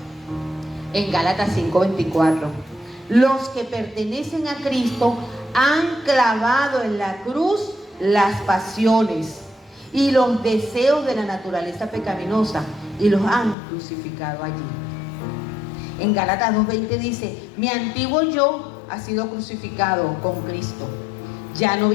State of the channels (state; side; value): drops out; right; at 13.6 s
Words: en Gálatas 5:24. Los que pertenecen a Cristo han clavado en la cruz las pasiones y los deseos de la naturaleza pecaminosa y los han crucificado allí. En Gálatas 2:20 dice: mi antiguo yo ha sido crucificado con Cristo. Ya no